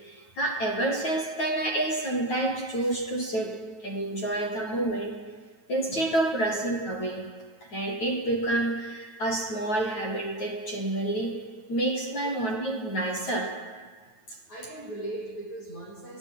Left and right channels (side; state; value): right; late; 9.2 ms